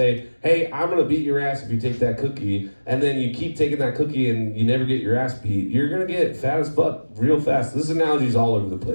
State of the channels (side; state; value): both; inverted; correlation -1.00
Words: hey, I'm gonna beat your ass if you take that cookie, and then you keep taking that cookie and you never get your ass beat, you're gonna get fat as fuck real fast. This analogy's all over the